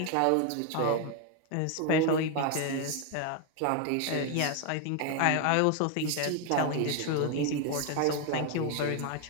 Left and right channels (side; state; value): both; different; correlation 0.01